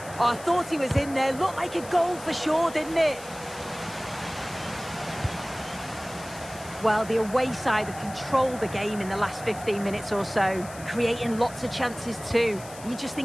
Oh, I thought he was in there. Looked like a goal for sure, didn't it? Well, the away side have controlled the game in the last 15 minutes or so, creating lots of chances too. You just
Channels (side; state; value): left; noise; hiss, 17 dB below the sound